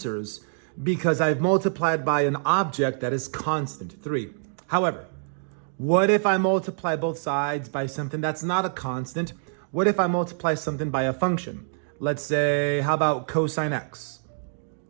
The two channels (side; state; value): left; silent; digital silence